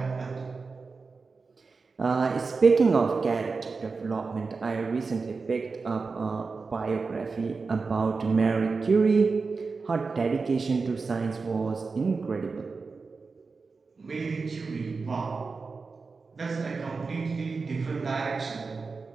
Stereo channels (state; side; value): quieter; left; 4.4 dB